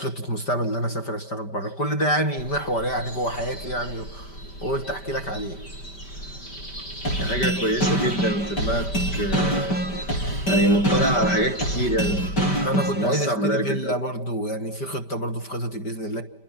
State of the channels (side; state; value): right; late; 5.1 ms